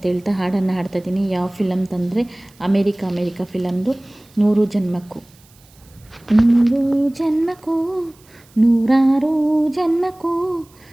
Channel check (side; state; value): right; noise; hiss, 29 dB below the sound